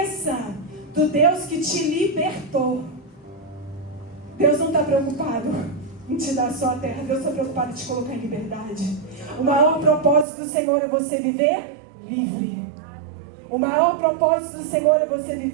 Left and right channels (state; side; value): drops out; left; at 10.2 s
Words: do Deus que te libertou. Deus não está preocupado em te dar só a terra. Deus está preocupado em te colocar em liberdade. O maior propósito do Senhor é você viver livre. O maior propósito do Senhor é você